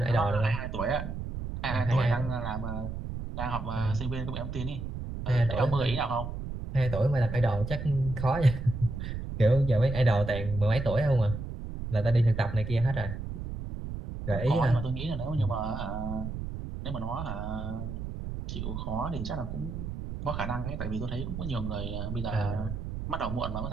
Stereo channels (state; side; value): noise; right; rumble, 6 dB below the sound